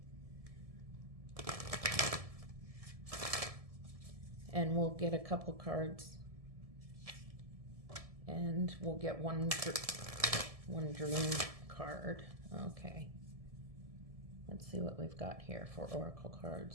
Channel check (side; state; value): left; late; 1.7 ms